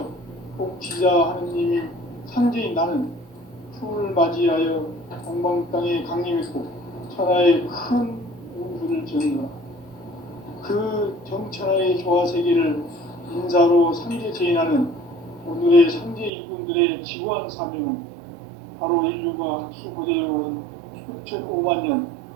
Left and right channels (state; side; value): drops out; left; at 16.3 s